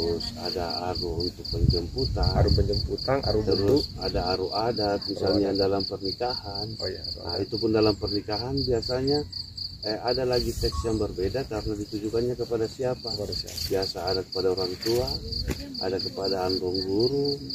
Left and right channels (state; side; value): identical; both; correlation 1.00